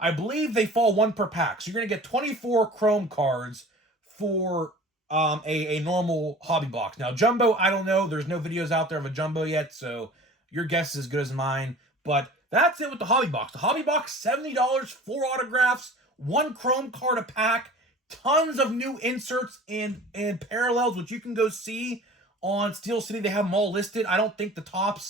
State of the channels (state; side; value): normal; both; correlation 0.43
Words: believe they fall one per pack. So you're going to get 24 chrome cards for a normal Hobby box. Now, jumbo, I don't know. There's no videos out there of a jumbo yet, so your guess is as good as mine. But that's it with the Hobby box. The Hobby box, $70, 4 autographs, 1 chrome card a pack, tons of new inserts and parallels, which you can go see on Steel City. They have them all listed. I don't think the